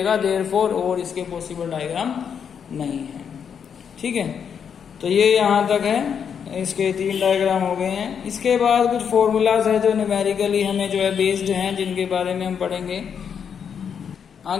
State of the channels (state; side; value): quieter; right; 7.4 dB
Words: देयरफॉर और इसके पॉसिबल डायग्राम नहीं है, ठीक है। तो ये यहाँ तक है, इसके 3 डायग्राम हो गए हैं। इसके बाद कुछ फॉर्मूलाज है जो न्यूमेरिकली हमें जो है बेस्ड हैं, जिनके बारे में हम पढ़ेंगे